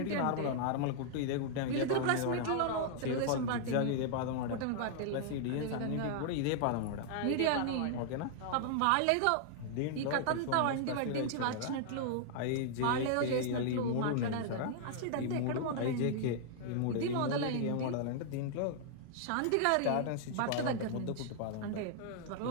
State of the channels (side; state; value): both; different; correlation -0.01